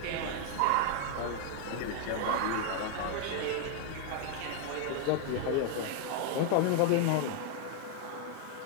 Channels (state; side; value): different; both; correlation 0.00